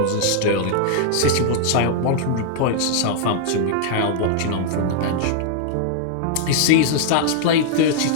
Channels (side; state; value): both; different; correlation -0.01